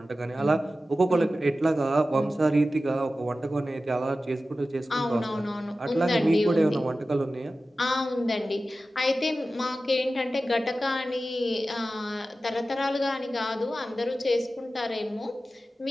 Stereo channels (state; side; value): normal; both; correlation 0.94